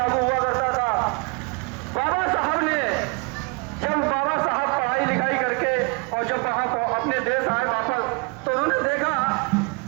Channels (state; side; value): quieter; left; 31.0 dB